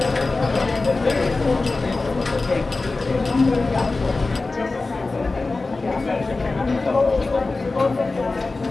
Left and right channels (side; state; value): right; quieter; 3.5 dB